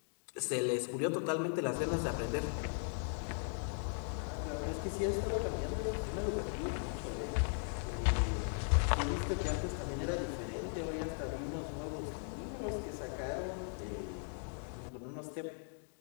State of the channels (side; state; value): right; silent; 52 dB below the other